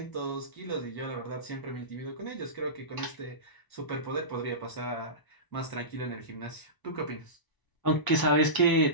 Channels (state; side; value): late; right; 1.0 ms